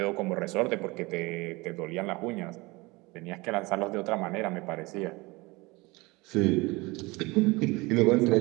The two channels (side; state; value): left; quieter; 23.8 dB